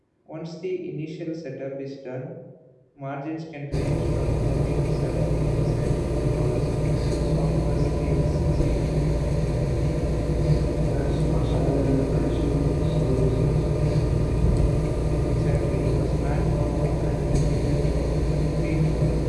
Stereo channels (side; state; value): both; identical; correlation 1.00